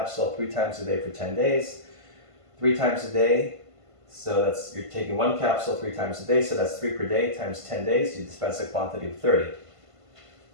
3 times a day for 10 days. 3 times a day, so you're taking 1 capsule 3 times a day, so that's 3 per day times 10 days, you dispense a quantity of 30.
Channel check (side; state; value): left; late; 1.5 ms